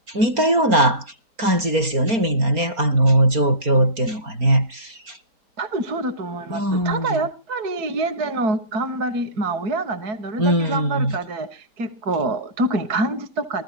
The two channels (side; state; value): left; late; 4.3 ms